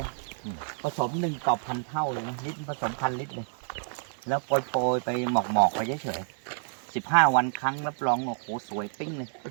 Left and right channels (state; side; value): silent; left; digital silence